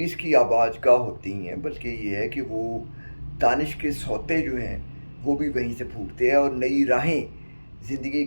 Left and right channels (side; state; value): both; inverted; correlation -1.00